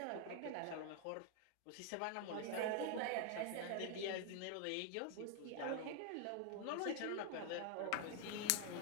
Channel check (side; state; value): both; different; correlation 0.00